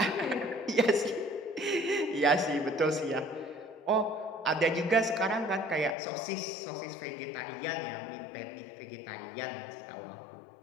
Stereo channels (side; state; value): right; drops out; at 6.0 s